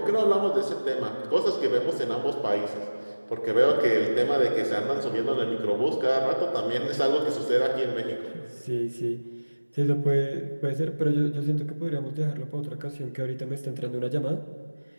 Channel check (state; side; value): inverted; both; correlation -1.00